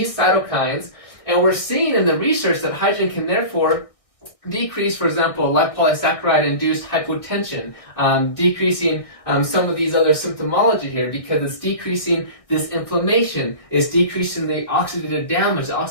cytokines. And we're seeing in the research that hydrogen can therefore decrease, for example, lipopolysaccharide-induced hypotension, decreasing some of these other symptomology here because it's decreasing this inflammation, it's decreasing the oxidative damage, the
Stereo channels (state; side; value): late; right; 1.6 ms